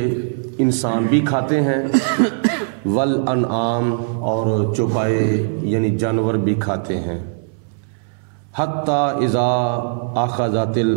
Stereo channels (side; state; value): left; silent; 66 dB below the other